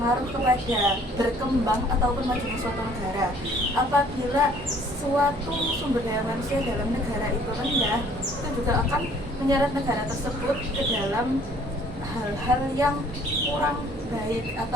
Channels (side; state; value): both; normal; correlation 0.57